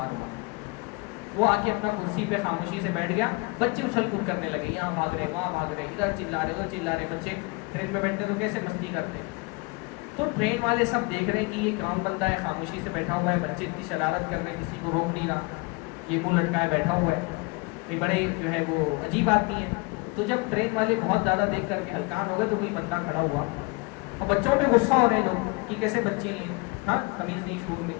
ہوا، وہ آ کے اپنا کرسی پہ خاموشی سے بیٹھ گیا، بچے اچھل کود کرنے لگے، یہاں بھاگ رہے وہاں بھاگ رہے، ادھر چلا رہے ادھر چلا رہے۔ بچے ٹرین میں بیٹھتے تو کیسے مستی کرتے، تو ٹرین والے سب دیکھ رہے ہیں کہ یہ کون بندہ ہے، خاموشی سے بیٹھا ہوا ہے، بچے اتنی شرارت کر رہے ہیں، کسی کو روک نہیں رہا، یہ منہ لٹکائے بیٹھا ہوا ہے، یہ بڑے جو ہے وہ عجیب آدمی ہے۔ تو جب ٹرین والے بہت زیادہ دیکھ کر کے ہلکان ہو گئے تو کوئی بندہ کھڑا ہوا، اور بچوں پہ غصہ ہو رہے ہیں لوگ کہ کیسے بچے ہیں، ہاں تمیز نہیں شعور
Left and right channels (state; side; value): quieter; right; 28.0 dB